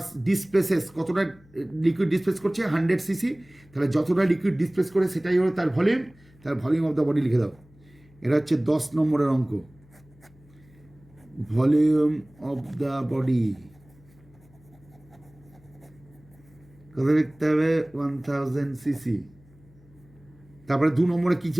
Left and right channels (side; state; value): left; noise; hum, 27 dB below the sound